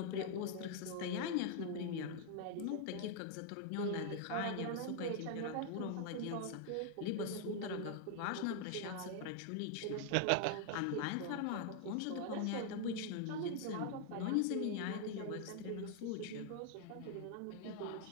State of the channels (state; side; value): different; both; correlation 0.00